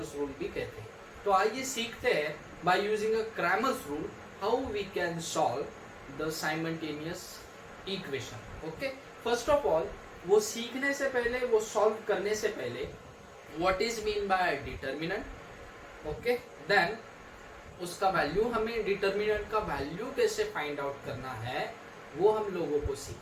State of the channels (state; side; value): identical; both; correlation 1.00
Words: रूल भी कहते हैं. तो आइए सीखते हैं by using a Cramer's rule how we can solve the simultaneous equation. Okay, first of all वो सीखने से पहले, वो सॉल्व करने से पहले what is mean by determinant. Okay, then उसका वैल्यू, हमें डिटर्मिनेंट का वैल्यू कैसे फाइंड आउट करना है वो हम लोगों को